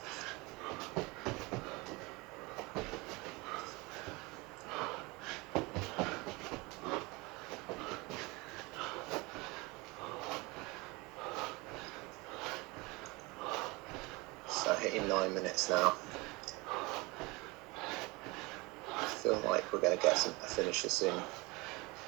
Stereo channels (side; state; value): left; quieter; 24.9 dB